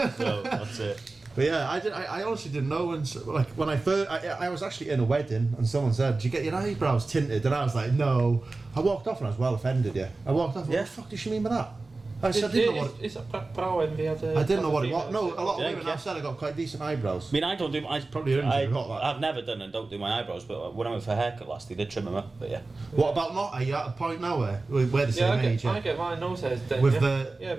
No, that's it. But yeah, I honestly didn't know. And so, like when I first, I was actually in a wedding, and someone said, "Did you get your eyebrows tinted?" And I was like, "No." I walked off and I was well offended. Yeah, I walked off. And Yeah. What the fuck does she mean by that? I didn't know what. Is that brow envy? I didn't know what it was. No, a lot of women have said I got quite decent eyebrows. I mean, I don't do. I've never done and don't do my eyebrows, but when I went for a haircut last, they did trim them up. But yeah. What about not? Are you at a point now where we're the same age? I get my nose hairs done. With the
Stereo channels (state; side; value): quieter; left; 3.4 dB